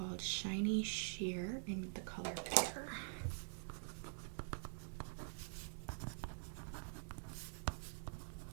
Shiny Sheer in the color Pear.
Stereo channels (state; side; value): silent; left; digital silence